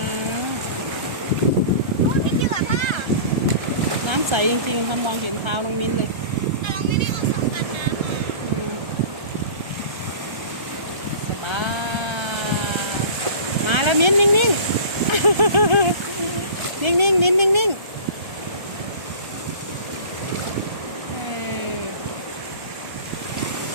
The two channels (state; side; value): late; left; 1.3 ms